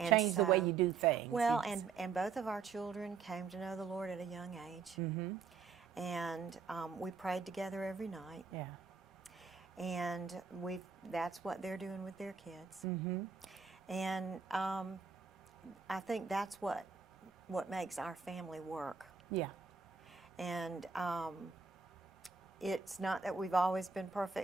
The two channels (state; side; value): quieter; left; 5.4 dB